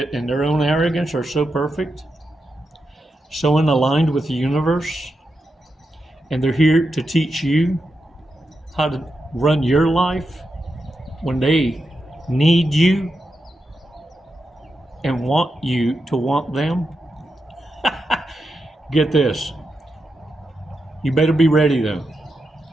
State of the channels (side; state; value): both; normal; correlation 0.87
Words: in their own arrogance are so perfect, so aligned with the universe, and they're here to teach you how to run your life when they need you and want you to want them. Get this. You better be ready though,